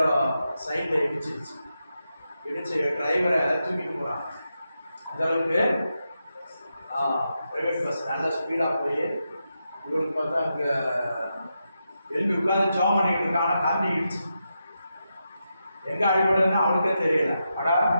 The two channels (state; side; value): inverted; both; correlation -0.86